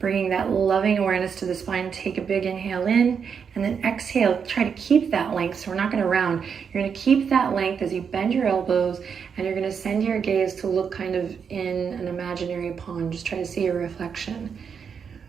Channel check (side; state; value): left; quieter; 6.7 dB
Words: that loving awareness to the spine. Take a big inhale in, and then exhale. Try to keep that length, so we're not going to round. You're going to keep that length as you bend your elbows, and you're going to send your gaze to look kind of in an imaginary pond. Just try to see your reflection.